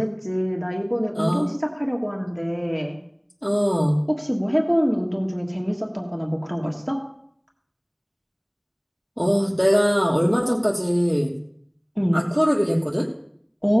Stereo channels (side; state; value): both; identical; correlation 1.00